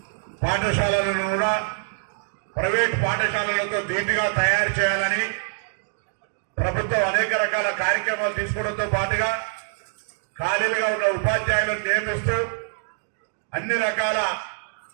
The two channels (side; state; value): left; silent; digital silence